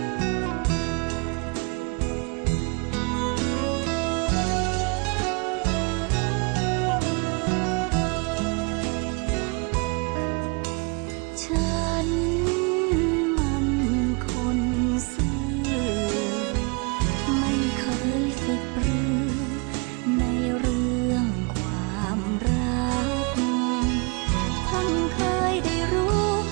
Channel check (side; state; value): left; quieter; 31.5 dB